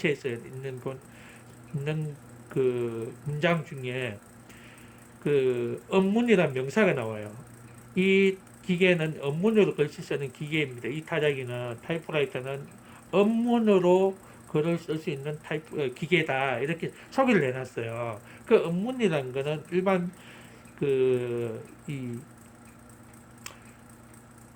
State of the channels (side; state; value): both; identical; correlation 1.00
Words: 있는 그 문장 중에 그 업문이라는 명사가 나와요. 이 기계는 업문으로 글씨 쓰는 기계입니다. 이 타작이는 타이프라이터는 업문으로 글을 쓸 수 있는 기계다. 이렇게 소개를 해놨어요. 그 업문이라는 거는 일반 그